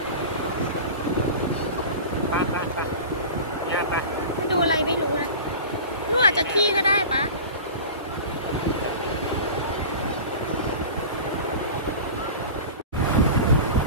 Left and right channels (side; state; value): both; inverted; correlation -0.34